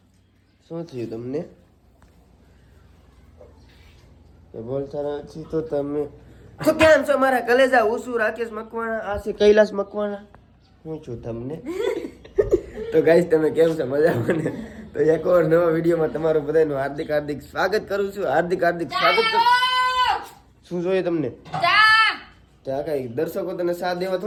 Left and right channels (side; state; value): both; identical; correlation 1.00